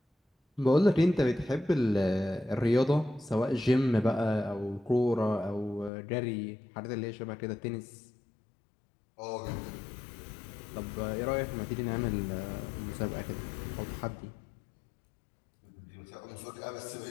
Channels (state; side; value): drops out; right; at 5.9 s